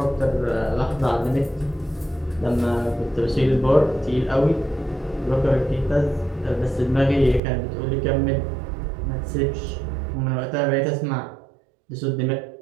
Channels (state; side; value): drops out; left; at 7.4 s